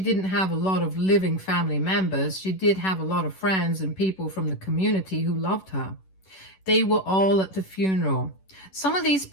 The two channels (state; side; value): late; right; 11 ms